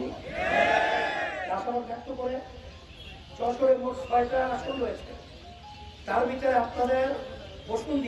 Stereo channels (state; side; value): identical; both; correlation 1.00